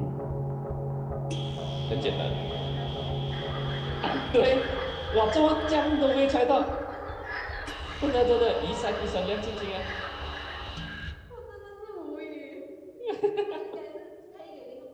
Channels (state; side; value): identical; both; correlation 1.00